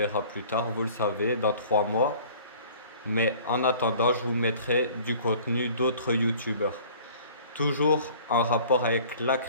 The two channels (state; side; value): inverted; both; correlation -0.49